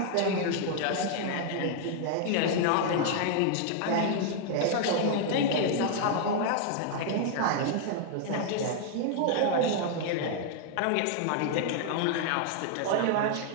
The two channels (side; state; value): both; different; correlation 0.00